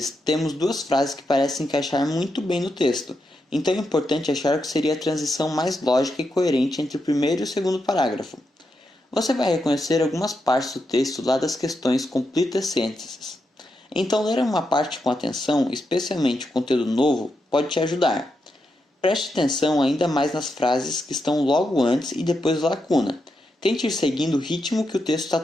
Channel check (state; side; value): normal; both; correlation 0.85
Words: temos duas frases que parecem encaixar muito bem no texto, então é importante achar o que seria a transição mais lógica e coerente entre o primeiro e o segundo parágrafo. Você vai reconhecer algumas partes do texto lá das questões Complete the Sentences. Então, ler uma parte com atenção, especialmente o conteúdo novo, pode te ajudar. Preste atenção ainda mais nas frases que estão logo antes e depois da lacuna. Tente ir seguindo o ritmo que o texto está